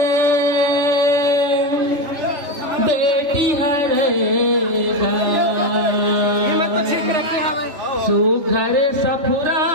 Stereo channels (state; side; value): late; left; 3.3 ms